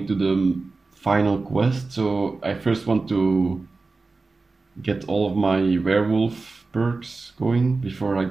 the final quest. So I first want to get all of my werewolf perks going before I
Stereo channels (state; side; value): quieter; left; 3.8 dB